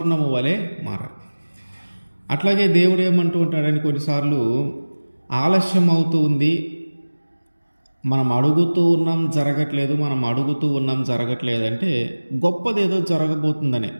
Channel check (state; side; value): inverted; both; correlation -1.00